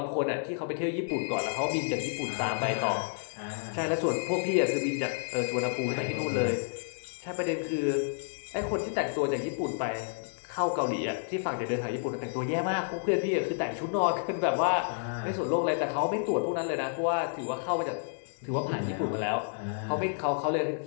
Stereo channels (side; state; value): right; silent; digital silence